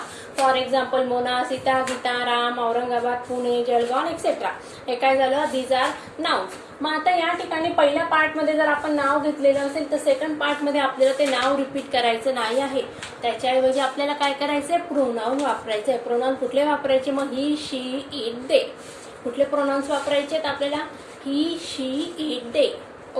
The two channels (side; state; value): both; identical; correlation 1.00